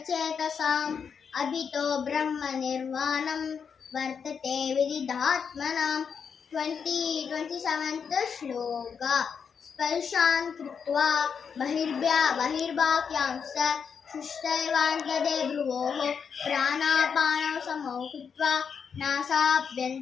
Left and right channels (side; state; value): right; quieter; 6.6 dB